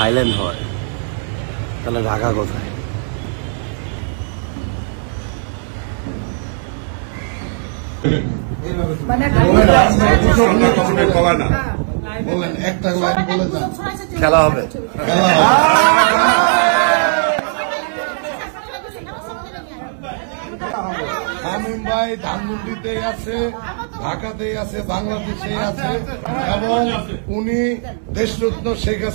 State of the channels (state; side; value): silent; left; digital silence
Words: হয় তাহলে ঢাকা কোথায়? বলেন একটা লাইন বলে যান। খেলা হবে। শামীম ভাই ধানমন্ডিতেই আছে, ঢাকাতেই আছে, বাংলাদেশেই আছে এবং উনি দেশরত্ন শেখ